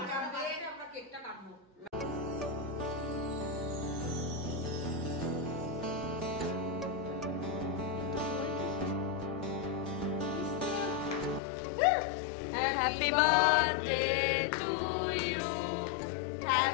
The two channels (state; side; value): drops out; right; at 11.4 s